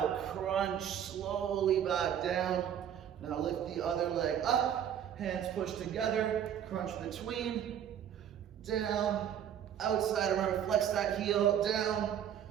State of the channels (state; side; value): quieter; left; 9.5 dB